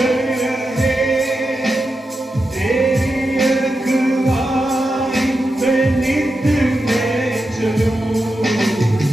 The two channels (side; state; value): both; normal; correlation 0.89